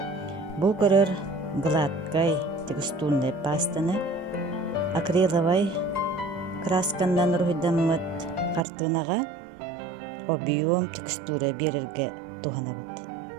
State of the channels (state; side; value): drops out; left; at 8.7 s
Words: Бу көрөр гладкай текстурная пастаны акриловай краскандан руйдаммыт картынага объем текстура берерге туханабыт.